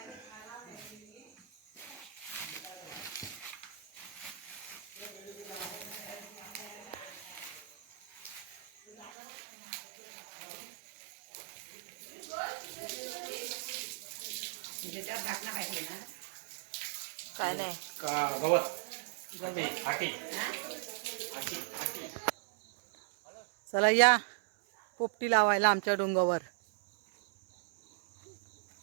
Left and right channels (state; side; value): drops out; left; at 9.1 s